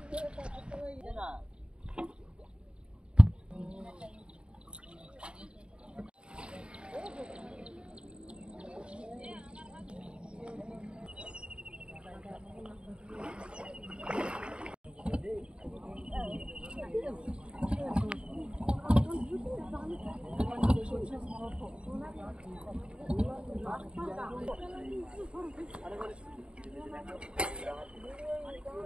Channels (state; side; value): late; left; 0.054 ms